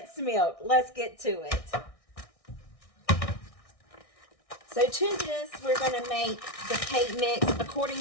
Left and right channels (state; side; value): late; right; 1.6 ms